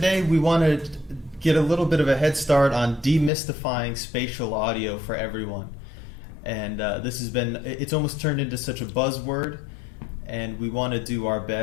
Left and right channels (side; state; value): right; drops out; at 3.3 s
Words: we want to get a little bit of a head start on demystifying spatial audio for everyone. And it's almost turned into such a buzzword, and we want to do our